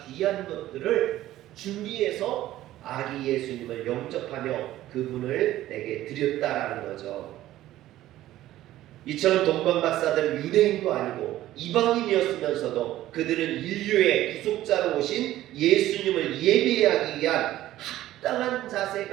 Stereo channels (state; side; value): quieter; left; 14.4 dB